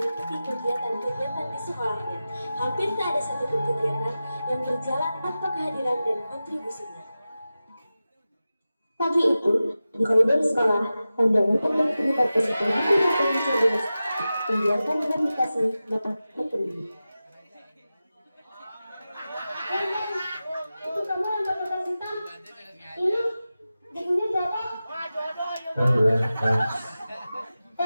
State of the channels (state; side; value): inverted; both; correlation -0.94